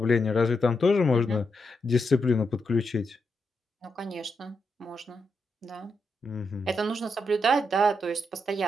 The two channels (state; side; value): normal; both; correlation 0.83